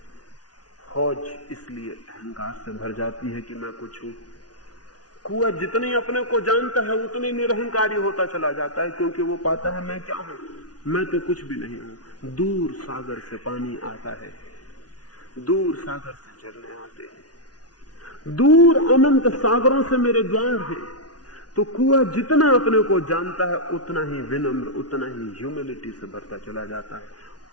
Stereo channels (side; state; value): right; late; 0.69 ms